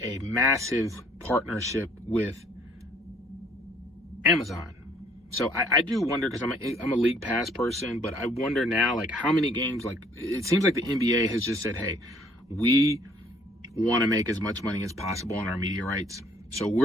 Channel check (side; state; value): both; normal; correlation 0.61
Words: massive partnership with Amazon. So I do wonder, because I'm a league pass person, but I wonder now, like, how many games, like, it seems like the NBA has just said, hey, we want to make as much money as possible on our media rights. So